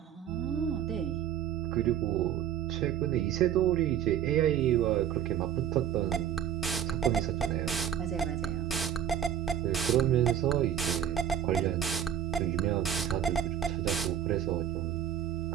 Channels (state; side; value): quieter; left; 9.6 dB